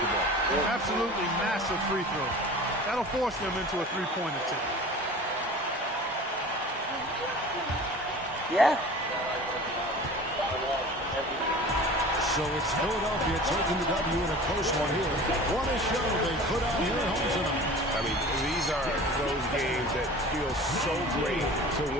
Absolutely massive free throw. That'll force them into a three-point attempt. Yeah. So it's Philadelphia taking the W in a close one here. What a show they put out here at home tonight. I mean, these are those games that feel so great to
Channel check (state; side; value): normal; both; correlation 0.40